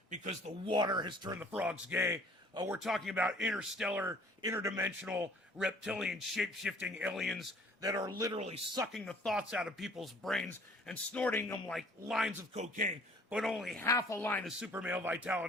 because the water has turned the frogs gay. We're talking about interstellar, interdimensional, reptilian, shape-shifting aliens that are literally sucking the thoughts out of people's brains and snorting them like lines of cocaine, but only half a line of super male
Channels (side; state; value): both; normal; correlation 0.55